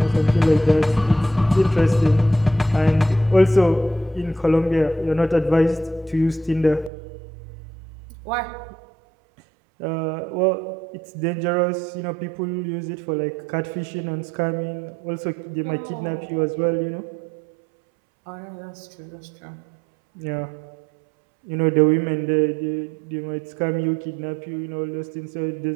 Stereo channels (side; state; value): left; drops out; at 6.9 s